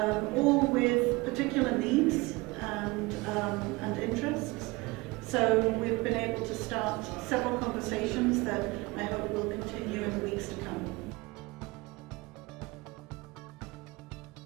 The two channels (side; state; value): left; quieter; 23.3 dB